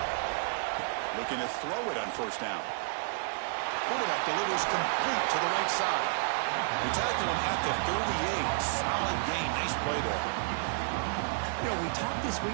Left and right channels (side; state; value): left; silent; digital silence